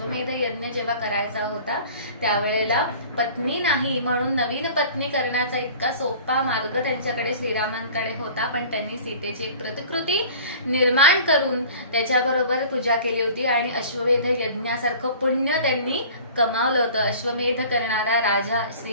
यज्ञ जेव्हा करायचा होता त्यावेळेला पत्नी नाही म्हणून नवीन पत्नी करण्याचा इतका सोपा मार्ग त्यांच्याकडे श्रीरामांकडे होता, पण त्यांनी सीतेची एक प्रतिकृती निर्माण करून त्याच्याबरोबर पूजा केली होती आणि अश्वमेध यज्ञासारखं पुण्य त्यांनी कमावलं होतं. अश्वमेध करणारा राजा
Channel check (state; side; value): inverted; both; correlation -0.44